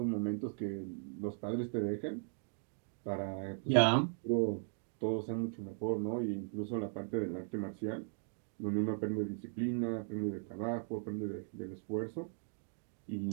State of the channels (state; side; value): silent; left; digital silence